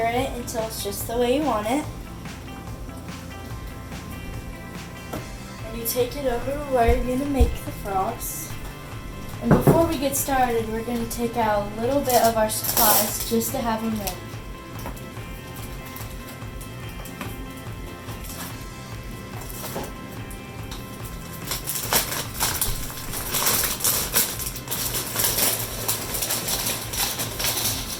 it until it's just the way you want it. And you take it over where you're going to make the frogs. And before we get started, we're going to take out a little bit of our supplies just to have them ready.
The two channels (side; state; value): both; identical; correlation 1.00